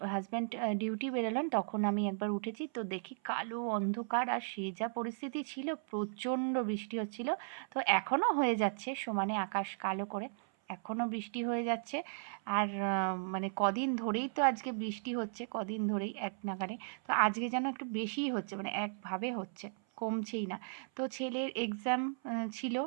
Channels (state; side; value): silent; left; 54 dB below the other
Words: হাজব্যান্ড ডিউটি বেরোলেন, তখন আমি একবার উঠেছি। তো দেখি কালো অন্ধকার, আর সে যা পরিস্থিতি ছিল, প্রচণ্ড বৃষ্টি হচ্ছিল। তো এখনও হয়ে যাচ্ছে, সমানে আকাশ কালো করে এখনও বৃষ্টি হয়ে যাচ্ছে। আর মানে কদিন ধরেই তো আজকে বৃষ্টি হচ্ছে, কদিন ধরেই এক নাগাড়ে। তো আজকে যেন একটু বেশিই হচ্ছে, মানে একভাবে হচ্ছে, কমছেই না। তো ছেলের এক্সাম ছিল।